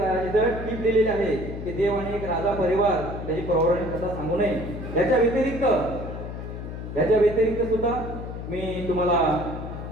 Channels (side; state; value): left; noise; hum, 8 dB below the sound